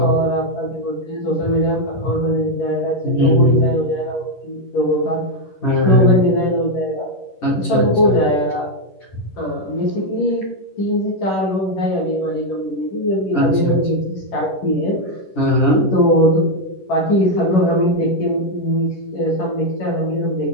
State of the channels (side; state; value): right; late; 11 ms